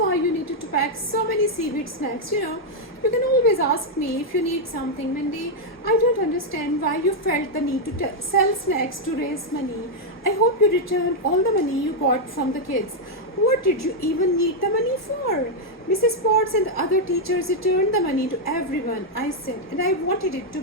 you needed to pack so many seaweed snacks, you know. You can always ask me if you need something, Mindy. I don't understand why you felt the need to sell snacks to raise money. I hope you returned all the money you got from the kids. What did you even need the money for? Mrs. Potts and the other teachers returned the money to everyone, I said, and I wanted it to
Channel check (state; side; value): normal; both; correlation -0.01